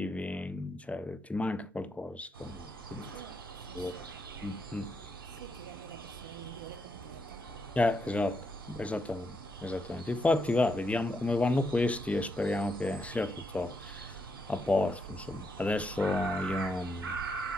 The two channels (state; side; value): normal; both; correlation 0.80